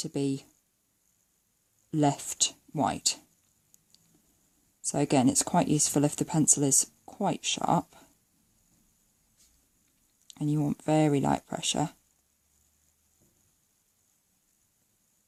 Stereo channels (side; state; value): both; identical; correlation 1.00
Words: be left white. So again, it's quite useful if the pencil is quite sharp and you want very light pressure.